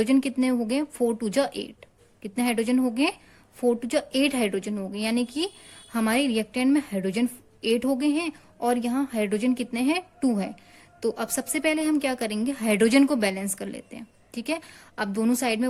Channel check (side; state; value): both; identical; correlation 1.00